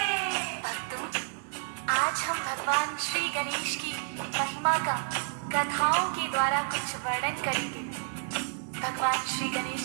भक्तों, आज हम भगवान श्री गणेश की महिमा का कथाओं के द्वारा कुछ वर्णन करेंगे। भगवान श्री गणेश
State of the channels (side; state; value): left; silent; digital silence